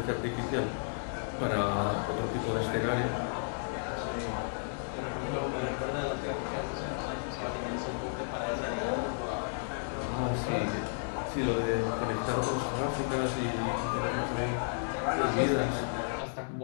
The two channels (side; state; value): right; silent; digital silence